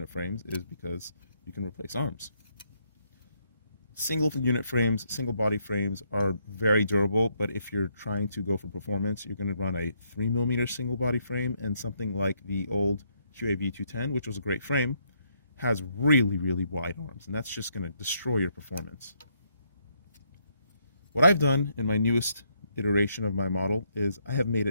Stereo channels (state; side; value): inverted; both; correlation -0.74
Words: frames is because you can replace arms. Single unit frames, single body frames are very durable, but if you're trying to go for performance, you're going to run a 3mm single body frame, and something like the old QAV 210, which was a great frame, has really, really wide arms, and that's just going to destroy your performance. What I've done in my newest iteration of my model is I have made